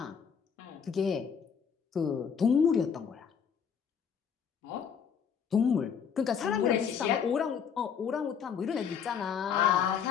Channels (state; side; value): quieter; right; 7.1 dB